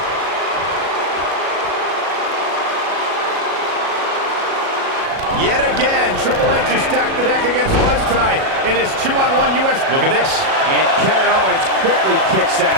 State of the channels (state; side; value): late; left; 37 ms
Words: Yet again, Triple H has stacked the deck against Buzz tonight in his 2-on-1 U.S. Look at this. And Kevin Owens quickly kicks